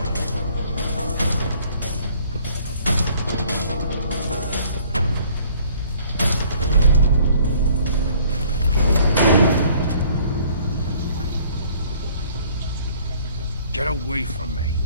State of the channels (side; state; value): both; inverted; correlation -0.57